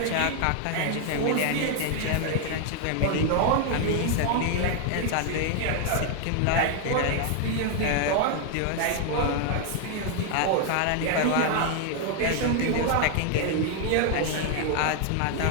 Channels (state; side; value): different; both; correlation 0.00